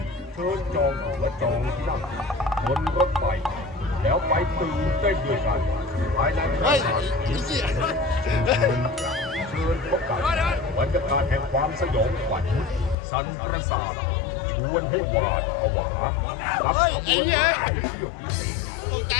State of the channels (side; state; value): right; drops out; at 13.0 s